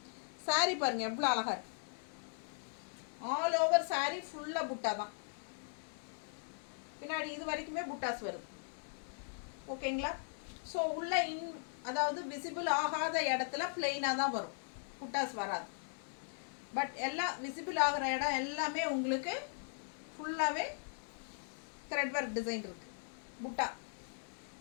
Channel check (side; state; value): right; silent; digital silence